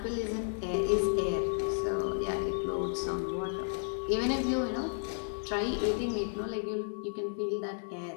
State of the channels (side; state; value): right; silent; 56 dB below the other